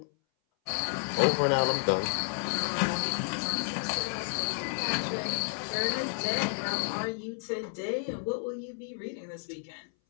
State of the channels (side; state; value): right; silent; 57 dB below the other